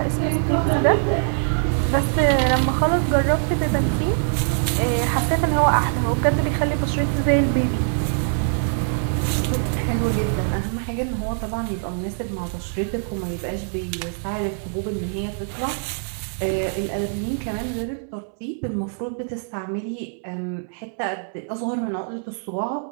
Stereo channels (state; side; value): silent; left; 63 dB below the other